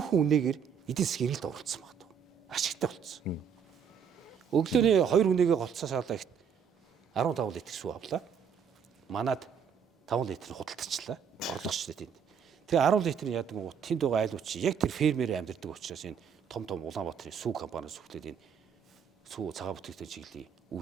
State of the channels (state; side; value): quieter; left; 7.2 dB